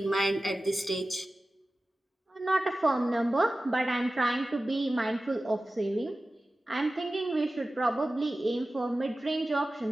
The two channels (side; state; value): both; normal; correlation 0.96